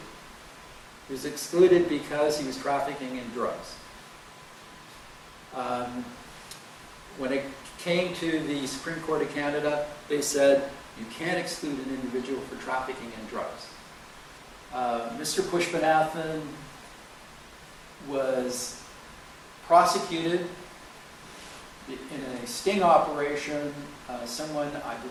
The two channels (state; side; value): identical; both; correlation 1.00